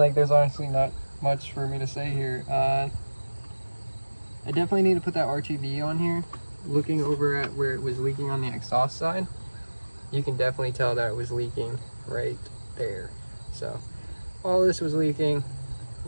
there's honestly not much for me to say here. I definitely need to put that RTV on here. Looking over at where it was leaking on the exhaust side, you can definitely tell that it was leaking right there. So all this was leaking, it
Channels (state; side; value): inverted; both; correlation -1.00